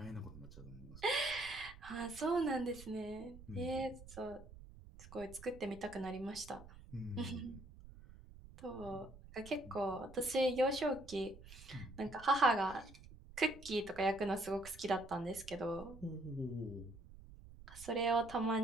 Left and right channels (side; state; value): right; noise; rumble, 17 dB below the sound